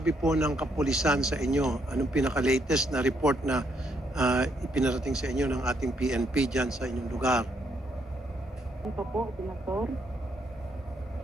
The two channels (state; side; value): normal; both; correlation 0.74